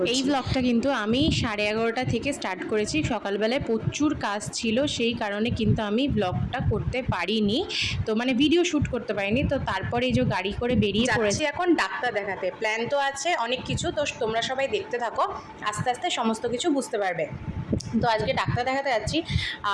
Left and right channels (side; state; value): both; identical; correlation 1.00